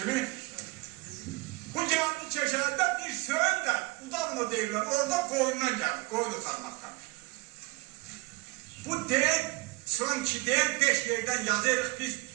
Bu gəldi Keşərdə bir Söyün də, Udavno deyirlər, orada qoyundan gəldi, qoyun utanmaqdan. Bu deyil, son ki deyil, 5 yerdən yazırıq biz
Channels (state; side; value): quieter; left; 24.3 dB